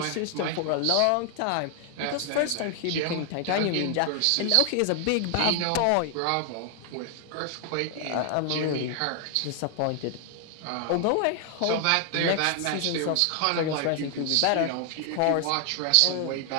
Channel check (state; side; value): different; both; correlation 0.00